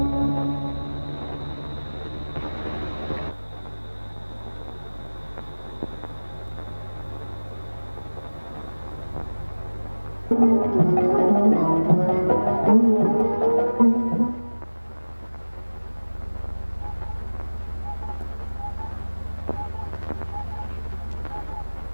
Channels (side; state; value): both; inverted; correlation -1.00